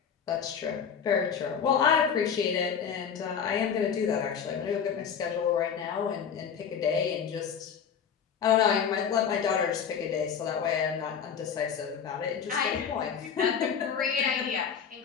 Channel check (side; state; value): right; quieter; 7.3 dB